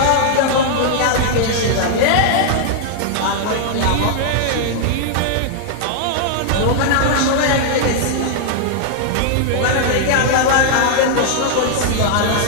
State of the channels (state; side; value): different; both; correlation -0.01